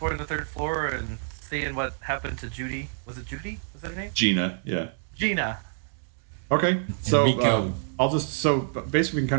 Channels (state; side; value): silent; left; digital silence